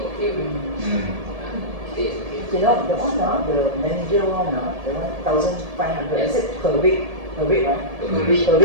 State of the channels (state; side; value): late; left; 1.7 ms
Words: of okay. Okay. You know, the one, the manager one, the 1,500, I said per week, right? Per week,